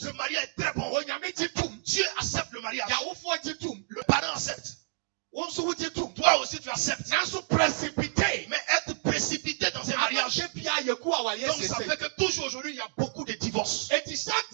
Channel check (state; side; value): silent; left; digital silence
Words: Le mariage est très bon. Dieu accepte le mariage. Le parent accepte. Toi aussi tu acceptes. Mais être précipité dans un mariage, donc ça fait que toujours aujourd'hui il y a beaucoup de divorces.